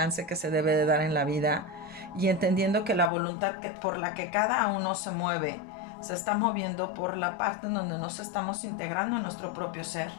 que se debe de dar en la vida y entendiendo que la voluntad por la que cada uno se mueve se está moviendo por la parte en donde nos estamos integrando en nuestro propio ser.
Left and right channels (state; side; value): drops out; right; at 3.1 s